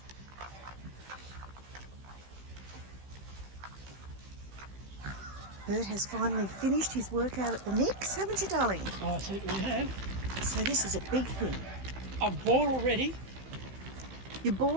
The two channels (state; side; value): late; left; 15 ms